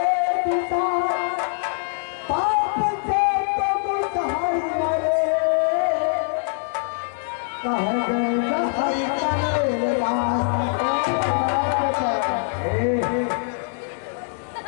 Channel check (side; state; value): right; silent; digital silence